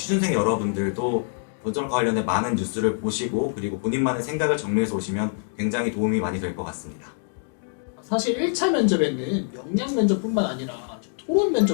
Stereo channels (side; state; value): right; silent; 62 dB below the other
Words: 여러분들도 건설업과 관련된 많은 뉴스를 보시고 그리고 본인만의 생각을 정리해서 오시면 굉장히 도움이 많이 될 것 같습니다. 사실 1차 면접에는 역량 면접뿐만 아니라 토론